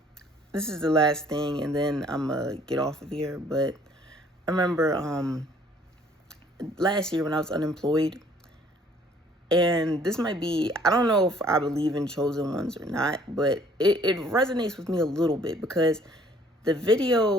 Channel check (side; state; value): both; normal; correlation 0.58